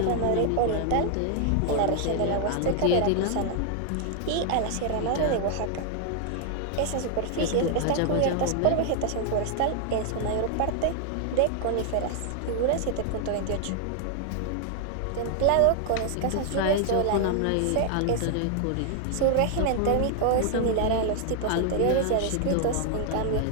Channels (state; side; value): different; both; correlation 0.00